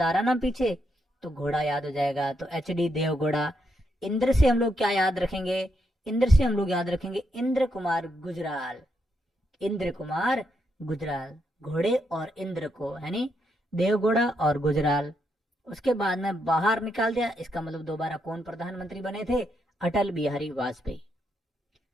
आ रहा ना पीछे, तो घोड़ा याद हो जाएगा, तो HD देवगौड़ा। इंद्र से हम लोग क्या याद रखेंगे? इंद्र से हम लोग याद रखेंगे इंद्र कुमार गुजराल, इंद्र कुमार गुजराल। घोड़े और इंद्र को, यानी देवगौड़ा और गुजराल। उसके बाद में बाहर निकाल दिया। इसका मतलब दोबारा कौन प्रधानमंत्री बने थे? अटल बिहारी वाजपेयी।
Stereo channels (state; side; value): normal; both; correlation 0.79